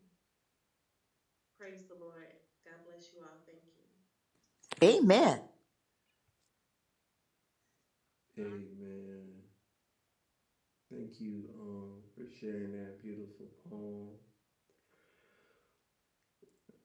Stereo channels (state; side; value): identical; both; correlation 1.00